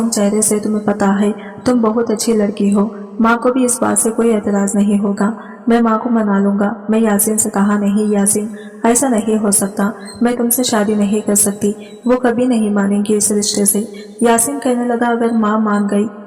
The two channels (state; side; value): identical; both; correlation 1.00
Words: चेहरे से तुम्हें पता है तुम बहुत अच्छी लड़की हो। माँ को भी इस बात से कोई एतराज नहीं होगा, मैं माँ को मना लूंगा। मैं यासीन से कहा, नहीं यासीन ऐसा नहीं हो सकता, मैं तुमसे शादी नहीं कर सकती, वो कभी नहीं मानेंगी इस रिश्ते से। यासीन कहने लगा, अगर माँ मान गई